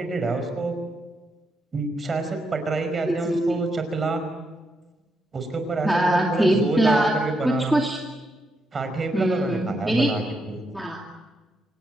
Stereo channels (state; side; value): normal; both; correlation 0.81